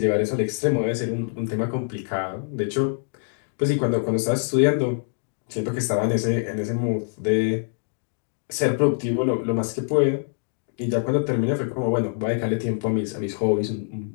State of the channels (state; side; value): silent; right; digital silence